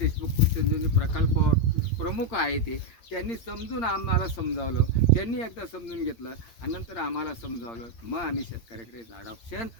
कृषी प्रकल्पावर प्रमुख आहे ते त्यांनी समजून आम्हाला समजावलं, त्यांनी एकदा समजून घेतलं आणि नंतर आम्हाला समजावलं. मग आम्ही शेतकऱ्याकडे अडॉप्शन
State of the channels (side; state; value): right; late; 8.7 ms